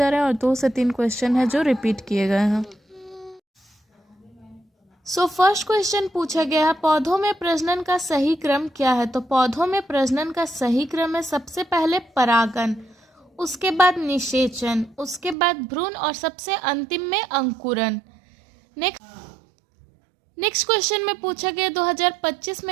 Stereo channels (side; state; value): left; drops out; at 15.4 s